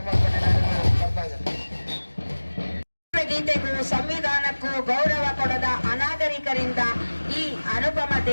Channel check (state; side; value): inverted; both; correlation -1.00